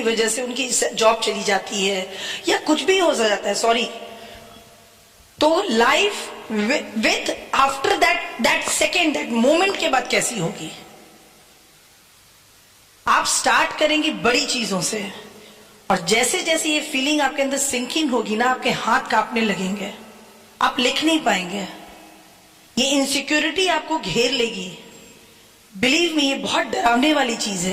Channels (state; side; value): identical; both; correlation 1.00